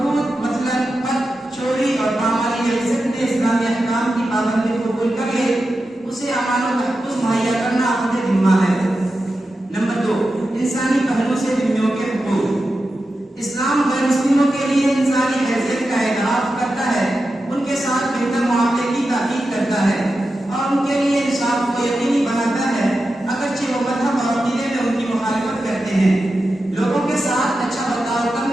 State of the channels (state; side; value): normal; both; correlation 0.91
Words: مثلا قتل، چوری اور پامالی عزت میں اسلامی احکام کی پابندی قبول کر لے، اسے امان و تحفظ مہیا کرنا اپنے ذمہ ہے. نمبر 2، انسانی پہلو سے ذمیوں کے حقوق. اسلام غیر مسلموں کے لیے انسانی حیثیت کا اعتراف کرتا ہے، ان کے ساتھ بہتر معاملے کی تاکید کرتا ہے اور ان کے لیے انصاف کو یقینی بناتا ہے اگرچہ وہ مذہب اور عقیدے میں ان کی مخالفت کرتے ہیں. لوگوں کے ساتھ اچھا برتاؤ